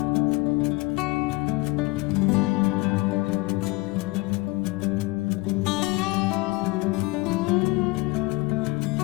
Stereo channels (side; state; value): right; quieter; 23.4 dB